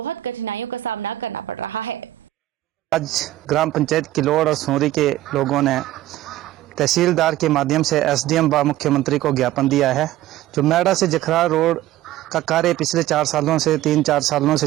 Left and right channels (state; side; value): quieter; left; 14.9 dB